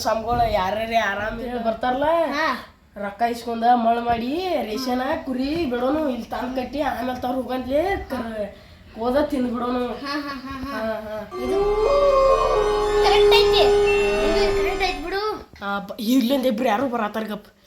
ಯಾರ್ಯಾರ ಆರಾಮ್ ಬರ್ತಾರಲ್ಲ ರೊಕ್ಕ ಇಸ್ಕೊಂಡ ಮಳ್ ಮಾಡಿ ರೇಷನ್ ಕುರಿ ಬಿಡೋನು ಇಲ್ಲಿ ತಂದ್ ಕಟ್ಟಿ ಆಮೇಲೆ ತವ್ರ ಹೋಗಂತ್ಲೆ ಹೋದ ತಿಂದ್ ಬಿಡೋನು. ಇರ್ಲಿಂದ ಇಬ್ರು ಯಾರು ಬರತ್ತಾರ ಗಪ್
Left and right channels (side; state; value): both; identical; correlation 1.00